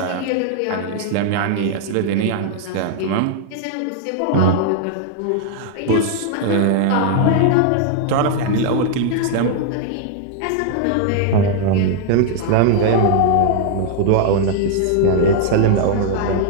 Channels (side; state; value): both; different; correlation 0.00